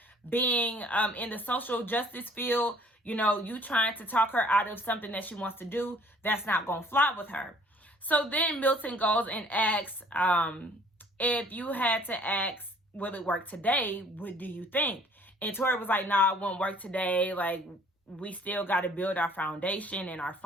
being in the social justice field, you trying to talk her out of something that she wants to do, that's not going to fly with her. So then Milton goes and asks, if you had to ask, will it work today? What do you think? And Tori was like, nah, it won't work today. Like, we still got to build our foundation and our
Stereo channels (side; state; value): both; normal; correlation 0.56